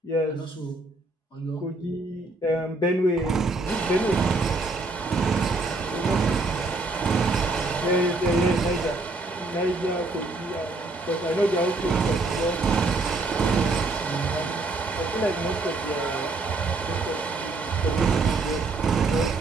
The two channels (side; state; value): left; quieter; 3.2 dB